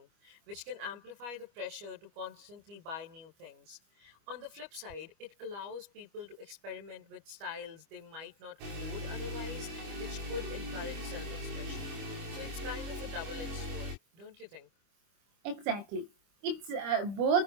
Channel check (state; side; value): late; left; 25 ms